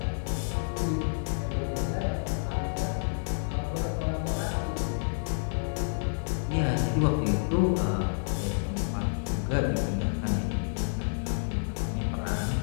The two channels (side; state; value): right; silent; digital silence